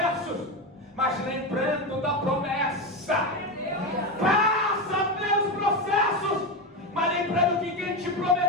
mas lembrando da promessa. Passa pelos processos, mas lembrando que quem te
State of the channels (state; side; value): normal; both; correlation 0.15